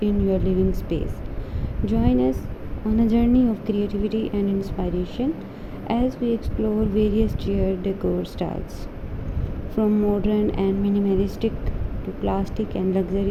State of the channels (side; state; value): both; identical; correlation 1.00